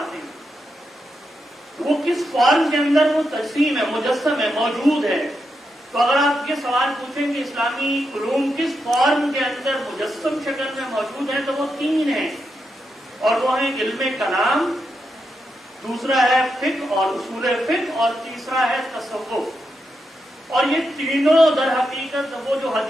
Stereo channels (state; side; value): normal; both; correlation 0.85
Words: ہیں. وہ کس فارم کے اندر وہ تجسیم ہے، مجسم ہے، موجود ہے. تو اگر آپ یہ سوال پوچھیں کہ اسلامی علوم کس فارم کے اندر مجسم شکل میں موجود ہے تو وہ تین ہیں، اور وہ ہیں علم کلام، دوسرا ہے فقہ اور اصول فقہ، اور تیسرا ہے تصوف. اور یہ تینوں در حقیقت وہ جو